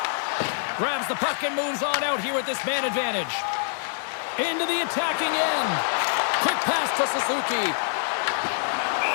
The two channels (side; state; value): right; silent; digital silence